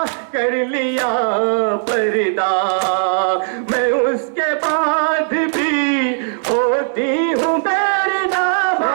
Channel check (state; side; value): silent; left; 68 dB below the other